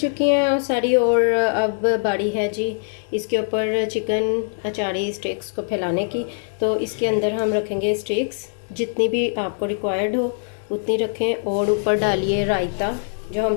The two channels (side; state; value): right; silent; digital silence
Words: हैं और सारी, और अब बारी है जी इसके ऊपर चिकन अचारी स्टिक्स को फैलाने की। तो इसके अंदर हम रखेंगे स्टिक्स, जितनी भी आपको रिक्वायर्ड हो उतनी रखें, और ऊपर डालिए रायता जो हम